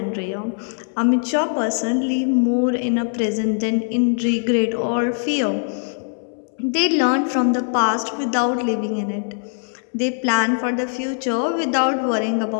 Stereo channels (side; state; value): right; silent; 65 dB below the other